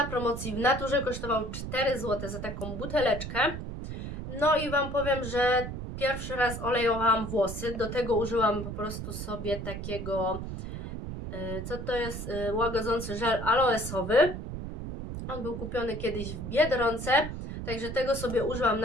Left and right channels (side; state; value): right; noise; rumble, 7 dB below the sound